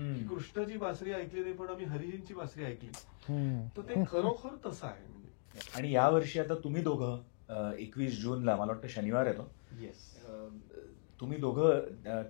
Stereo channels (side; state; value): right; silent; digital silence